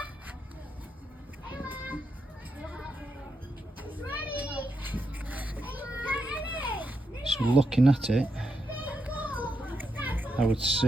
So looking at it, I would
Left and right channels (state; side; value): normal; both; correlation 0.83